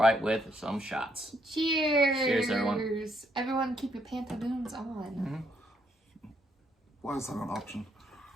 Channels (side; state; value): both; normal; correlation 0.73